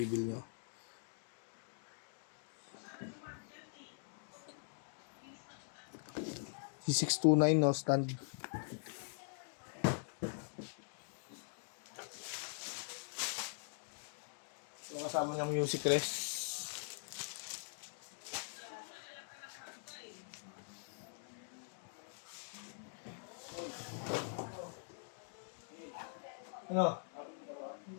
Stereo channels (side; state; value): right; silent; digital silence